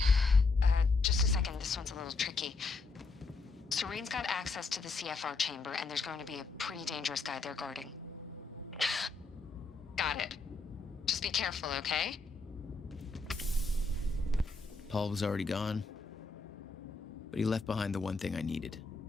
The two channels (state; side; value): quieter; right; 3.9 dB